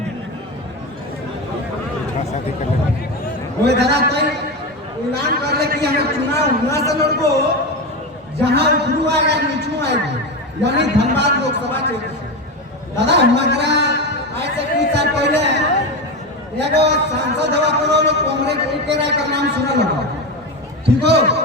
ओए दादा कोई ऐलान कर ले कि हमें चुनाव हुआ से लड़को जहां गुरु आएगा नीचू आएगी, यानी धनबाद लोकसभा क्षेत्र। दादा हमारा आज से कुछ साल पहले एगो सांसद हवा करो लोग कांग्रेस के राय का नाम सुना लगा, ठीक हो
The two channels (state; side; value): normal; both; correlation 0.18